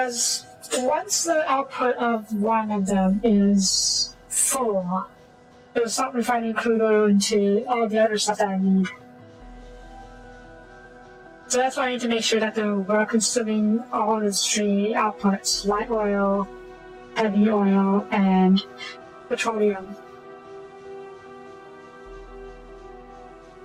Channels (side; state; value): both; identical; correlation 1.00